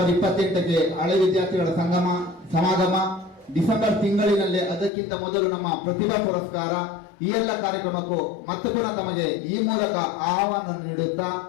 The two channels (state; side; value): drops out; right; at 4.9 s